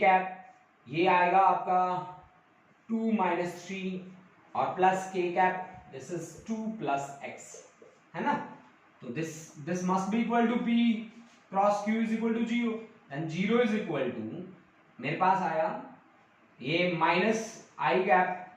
ये आएगा आपका 2 माइनस 3 और plus K cap this is 2 plus X, है ना। तो this must be equal to P cross Q is equal to 0 and 0 is equal to मेरे पास आया ये minus I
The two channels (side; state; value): both; identical; correlation 1.00